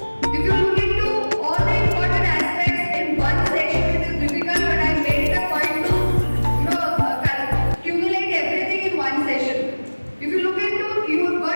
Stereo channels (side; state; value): both; inverted; correlation -1.00